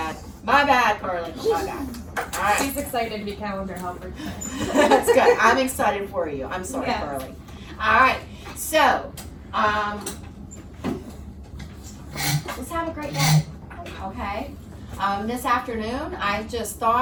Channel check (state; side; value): identical; both; correlation 1.00